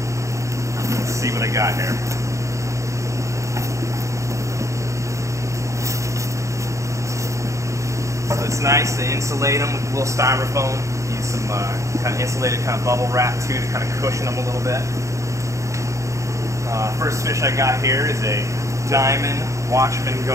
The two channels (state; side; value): late; left; 0.15 ms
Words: Let's see what I got here. So it's nice to insulate them with a little styrofoam. Use some kind of insulated kind of bubble wrap too to kind of cushion them a little bit. First fish I got here is a diamond watchman